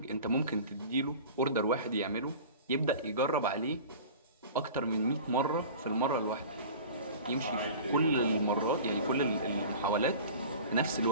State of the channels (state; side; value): inverted; both; correlation -0.39